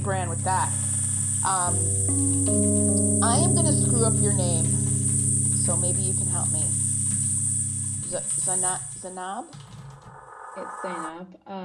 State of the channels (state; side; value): identical; both; correlation 1.00